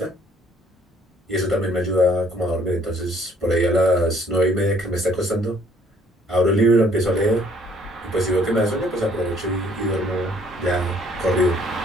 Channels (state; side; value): normal; both; correlation 0.61